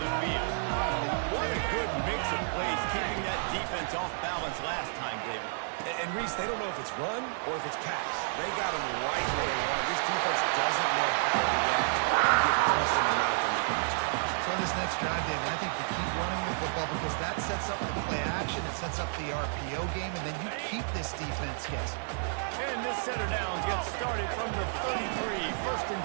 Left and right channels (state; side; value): silent; left; 57 dB below the other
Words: field. What a good mix of plays, keeping that defense off balance last time, David. And Reese, they don't know if it's run or if it's pass. They got them right where they want. This defense doesn't know how to react and get punched in the mouth on that last drive. So on this next drive, David, I think you keep running the football because that sets up the play action, it sets up the RPO game, and then you keep this defense guessing. And this set of downs gets started from the 33, first and